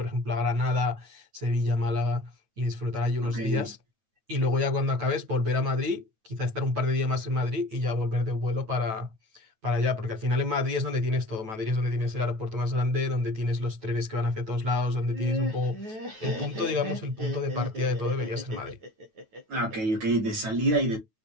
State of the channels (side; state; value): left; late; 9.2 ms